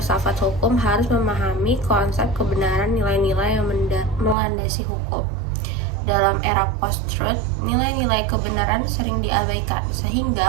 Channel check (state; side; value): drops out; left; at 4.4 s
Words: hukum harus memahami konsep kebenaran nilai-nilai yang melandasi hukum. Dalam era post-truth, nilai-nilai kebenaran sering diabaikan,